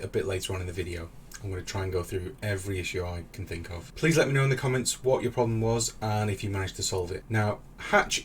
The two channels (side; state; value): both; identical; correlation 1.00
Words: a bit later on in the video. I'm going to try and go through every issue I can think of. Please let me know in the comments what your problem was and if you managed to solve it. Now, hatch